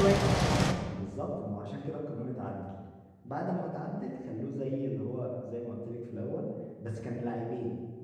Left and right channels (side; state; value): both; identical; correlation 1.00